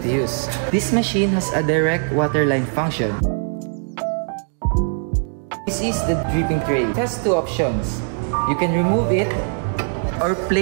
use. This machine has a direct water line function. This is the dripping tray. It has two options. You can remove it or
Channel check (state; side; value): silent; left; digital silence